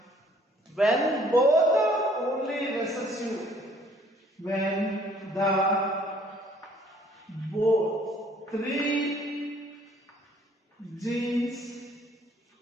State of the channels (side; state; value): both; normal; correlation 0.60